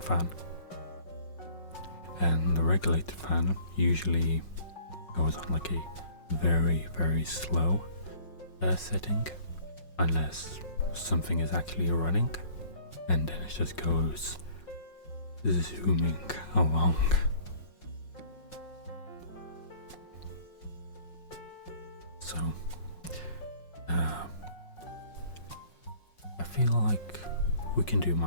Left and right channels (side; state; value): right; late; 5.5 ms